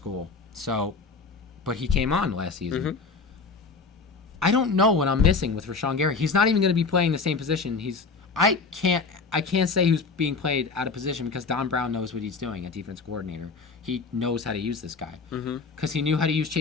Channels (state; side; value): quieter; right; 4.6 dB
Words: So, but he came on last season. Mm-hmm. I don't know what I'm missing with Rashan Gary. He's not even going to be playing the same position. I can't say who's being played out of position because Don Brown knows what he's doing, a defense coordinator. He knows how to use this guy. Because he knew how to use